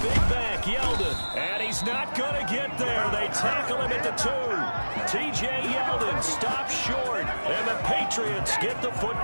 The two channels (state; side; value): inverted; both; correlation -1.00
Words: back, Yeldon. And he's not going to get there. They tackle him at the 2. T.J. Yeldon stops short. And the Patriots get the